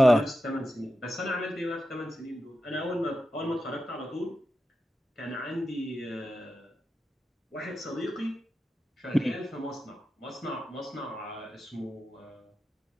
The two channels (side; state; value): both; normal; correlation 0.90